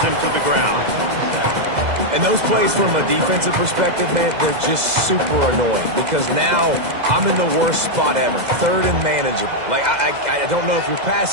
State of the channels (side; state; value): left; late; 2.0 ms